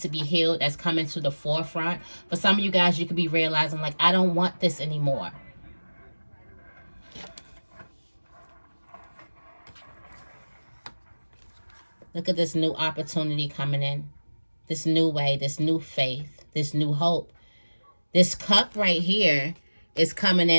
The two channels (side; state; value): both; inverted; correlation -1.00